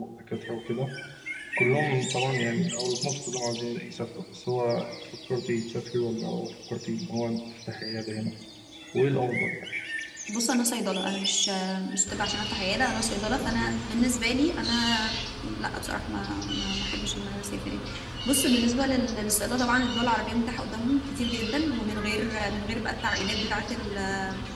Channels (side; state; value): both; identical; correlation 1.00